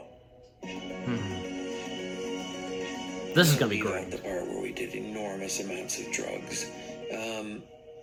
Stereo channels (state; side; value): identical; both; correlation 1.00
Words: This is gonna be Leave great. out the part where we did enormous amounts of drugs.